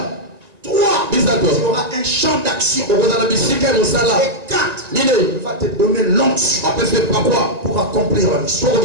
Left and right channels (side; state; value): left; late; 1.9 ms